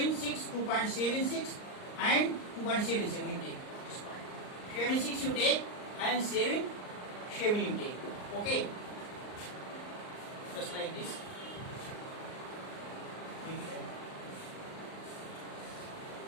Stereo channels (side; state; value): right; late; 39 ms